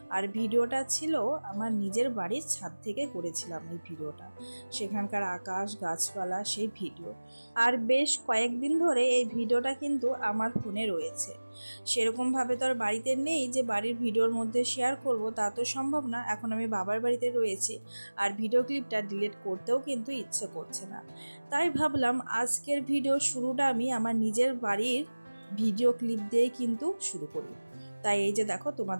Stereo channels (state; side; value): inverted; both; correlation -1.00